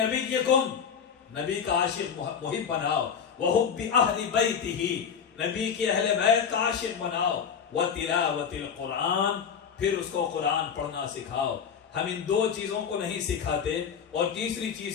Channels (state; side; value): quieter; right; 7.2 dB